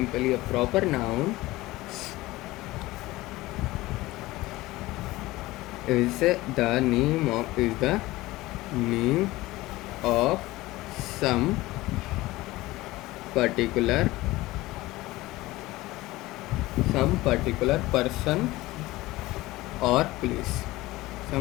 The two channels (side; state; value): right; quieter; 18.8 dB